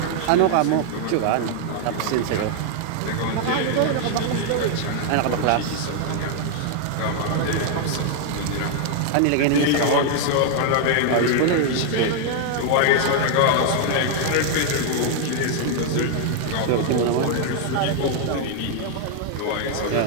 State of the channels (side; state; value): both; different; correlation 0.00